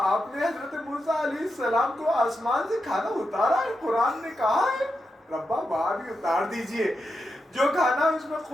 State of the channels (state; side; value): normal; both; correlation 0.87